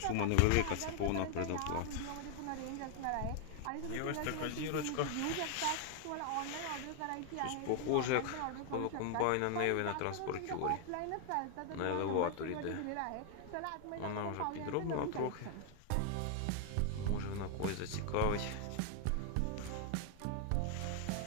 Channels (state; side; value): different; both; correlation 0.00